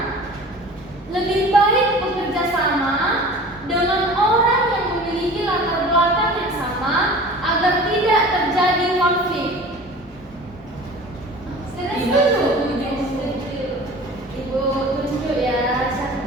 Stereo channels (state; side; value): normal; both; correlation 0.41